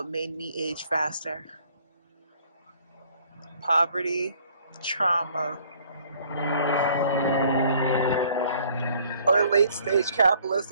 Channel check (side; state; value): both; inverted; correlation -0.59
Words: made me age faster. Poverty, trauma, or late stage